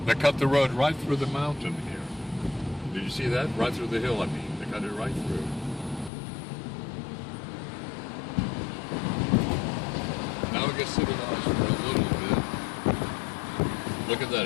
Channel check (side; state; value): right; drops out; at 6.1 s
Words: They cut the road right through the mountain here. Did you see that? Right through the hill, I mean. They cut it right through. Now it gets civilized for a little bit. Look at